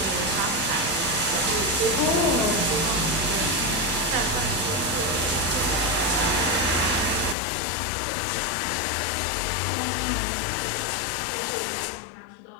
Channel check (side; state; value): right; drops out; at 7.4 s